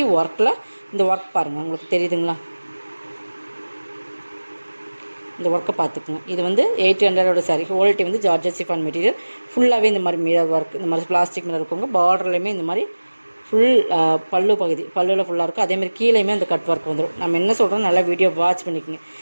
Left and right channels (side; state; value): both; inverted; correlation -1.00